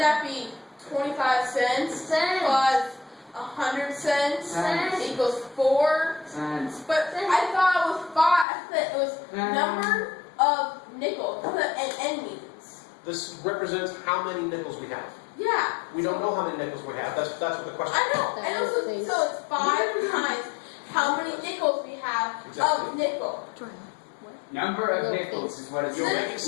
be 25 cents plus 100 cents equals 4? Cents. But I thought it was 5. I thought it was number of nickels. That's what an N means. This represents how many nickels we have. Yeah. We don't know how many nickels we have. That's what the question is. I know. And also, so it's 5 times how many nickels we have of nickel. Jordan, what? Number of nickels is what it's You're making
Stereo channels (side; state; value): right; drops out; at 8.5 s